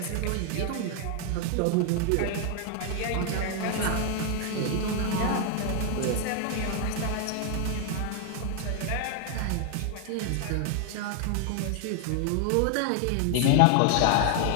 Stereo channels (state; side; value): different; both; correlation 0.00